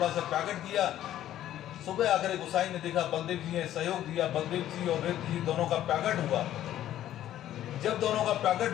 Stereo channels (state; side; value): quieter; right; 12.4 dB